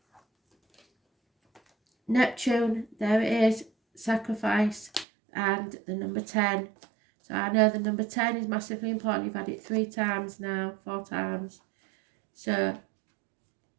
Neptune, there it is, sacrifice, and the number 10. So I know the number 10 is massively important. You've had it 3 times now, 4 times. So,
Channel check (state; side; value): drops out; left; at 5.1 s